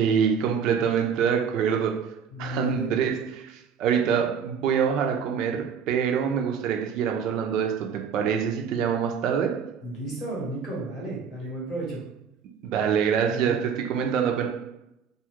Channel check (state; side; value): quieter; left; 6.9 dB